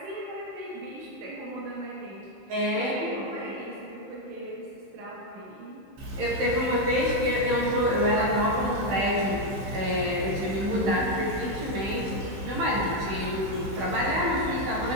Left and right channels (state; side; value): late; left; 15 ms